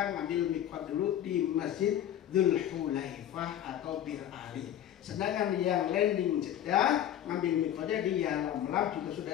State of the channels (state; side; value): quieter; right; 11.1 dB